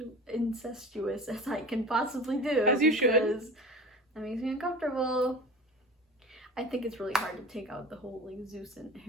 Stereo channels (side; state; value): both; normal; correlation 0.35